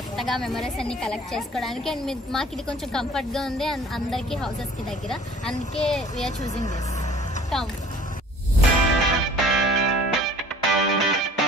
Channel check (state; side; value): normal; both; correlation 0.50